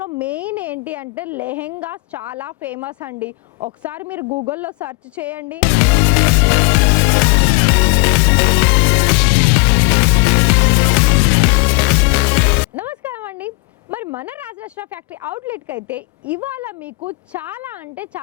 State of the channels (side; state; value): right; quieter; 27.0 dB